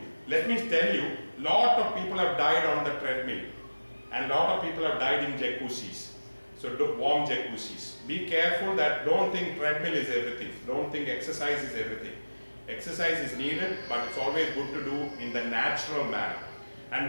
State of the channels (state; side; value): inverted; both; correlation -1.00